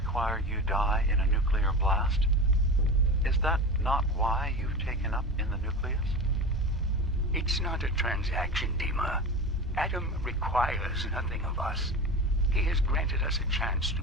you die in a nuclear blast? Is that not why you've taken up in the nucleus? It's not a transaction, Dima. Adam requires nothing of us. He has granted us a chance to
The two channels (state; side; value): normal; both; correlation 0.28